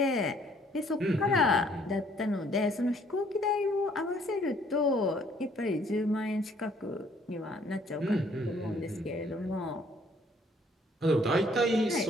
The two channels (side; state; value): both; normal; correlation 0.62